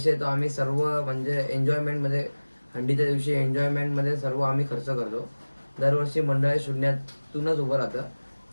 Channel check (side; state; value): both; inverted; correlation -1.00